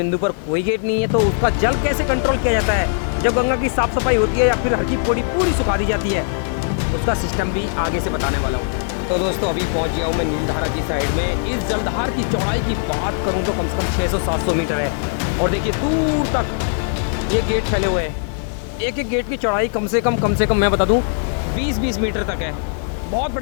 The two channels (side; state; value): right; silent; digital silence